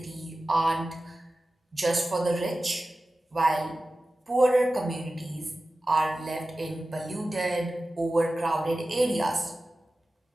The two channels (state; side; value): normal; both; correlation 0.95